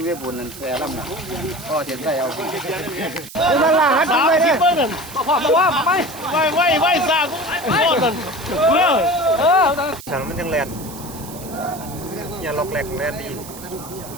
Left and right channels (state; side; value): noise; right; hiss, 15 dB below the sound